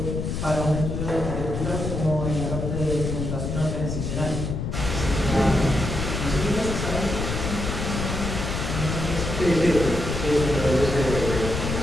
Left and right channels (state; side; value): noise; left; rumble, 3 dB below the sound